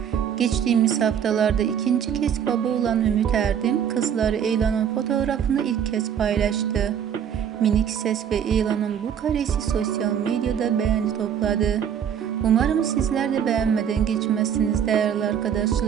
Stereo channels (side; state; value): left; quieter; 8.6 dB